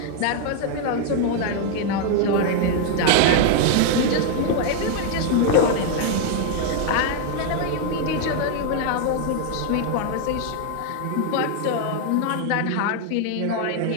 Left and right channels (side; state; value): both; different; correlation 0.00